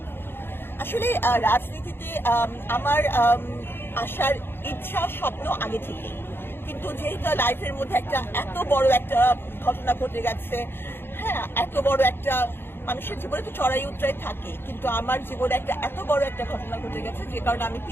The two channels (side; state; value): right; late; 0.11 ms